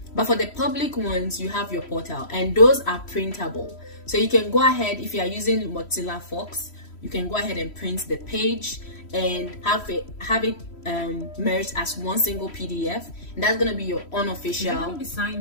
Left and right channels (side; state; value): right; late; 3.1 ms